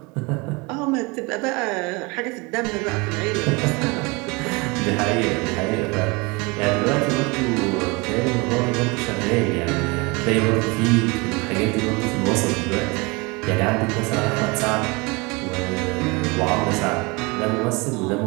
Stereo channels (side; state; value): left; quieter; 26.7 dB